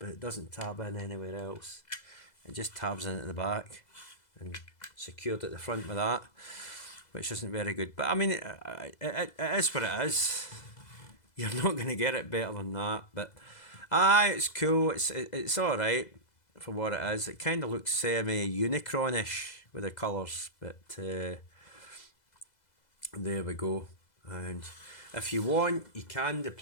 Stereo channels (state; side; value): late; right; 2.0 ms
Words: it doesn't tab in anywhere else. It just tabs in at the back and secured at the front with that, which isn't very good. But I mean, it is what it is. You're not going to get it better than that. But it's cool. It's all right for what it is. It kind of looks semi-Unicron-ish with the colours, but there we go. And if you want, you can